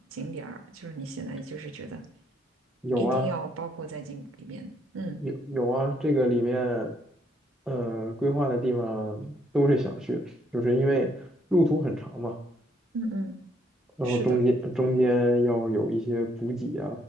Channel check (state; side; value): normal; both; correlation 0.71